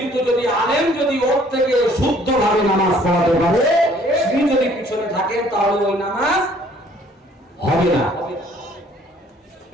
যদি আলেম যদি ওর থেকে শুদ্ধভাবে নামাজ পড়াতে পারে, তিনি যদি পিছনে থাকেন তাহলে ওই নামাজ হবে না।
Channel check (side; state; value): both; normal; correlation 0.59